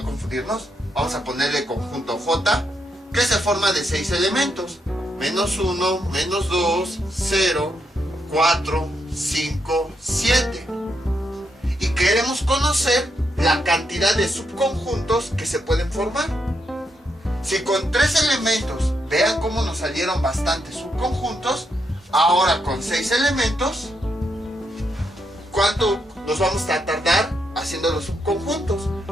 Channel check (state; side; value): normal; both; correlation 0.80